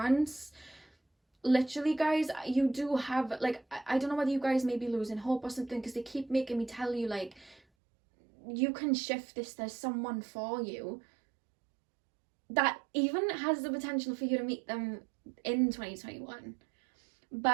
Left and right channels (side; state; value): left; drops out; at 7.6 s